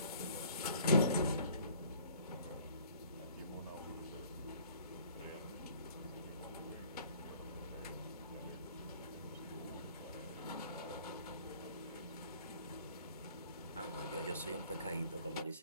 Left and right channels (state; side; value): inverted; both; correlation -0.55